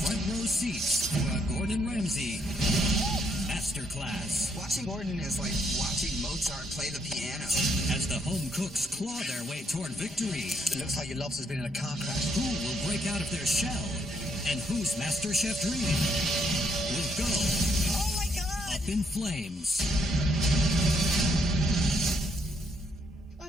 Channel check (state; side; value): normal; both; correlation 0.73